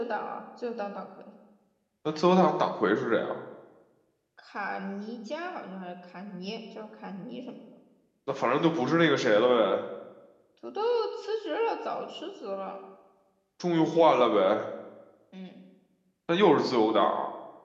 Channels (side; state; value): both; identical; correlation 1.00